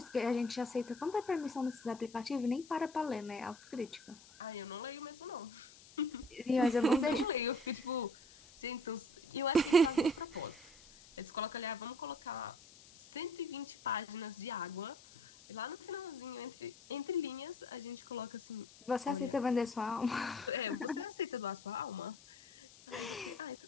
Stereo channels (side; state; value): left; noise; hiss, 21 dB below the sound